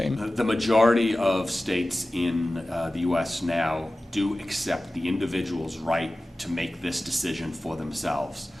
The majority of states in the U.S. now do accept the individual's right to make this decision for themselves.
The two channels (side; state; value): both; normal; correlation 0.96